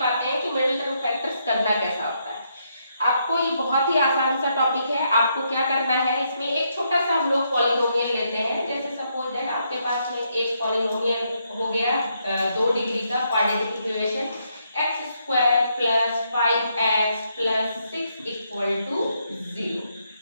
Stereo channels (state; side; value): inverted; both; correlation -0.77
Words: हैं कि मिडिल टर्म फैक्टर्स करना कैसा होता है। आपको ये बहुत ही आसान सा टॉपिक है। आपको क्या करना है, इसमें एक छोटा सा हम लोग पॉलिनोमियल लेते हैं। जैसे सपोज दैट आपके पास में एक पॉलिनोमियल हो गया 2 डिग्री का quadratic equation x square plus 5x plus 6 equal to 0।